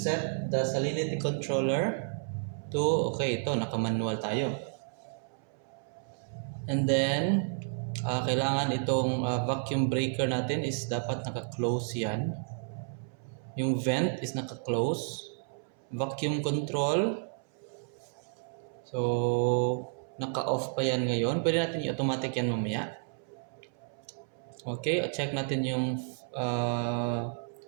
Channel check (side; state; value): left; silent; 57 dB below the other